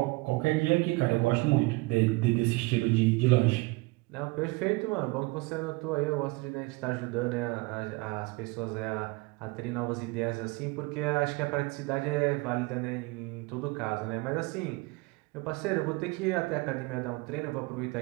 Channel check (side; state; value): left; quieter; 24.3 dB